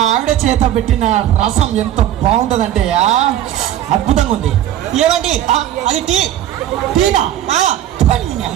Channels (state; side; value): quieter; left; 12.0 dB